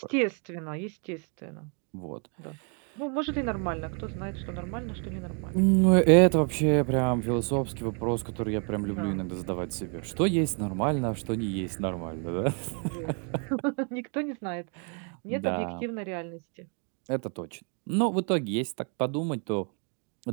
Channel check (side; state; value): left; quieter; 39.0 dB